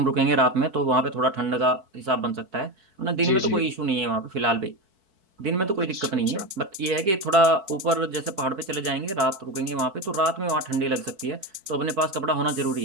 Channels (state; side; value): late; left; 4.5 ms